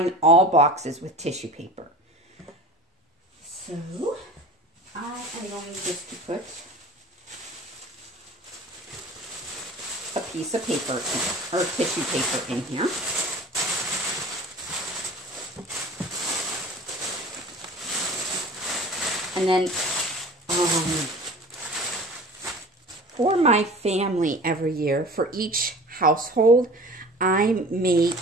all boxes with tissue paper. So I am going just to put a piece of paper or tissue paper in here. And then for my family every year, for each household, I make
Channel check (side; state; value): both; normal; correlation 0.40